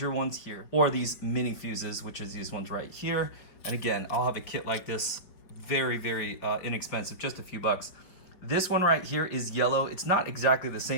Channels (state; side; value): late; right; 5.5 ms